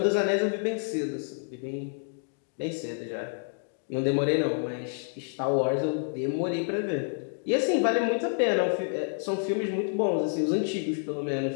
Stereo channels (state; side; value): silent; right; digital silence